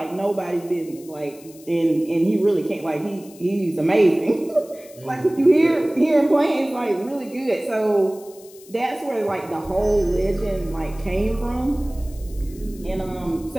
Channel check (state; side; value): noise; left; hiss, 22 dB below the sound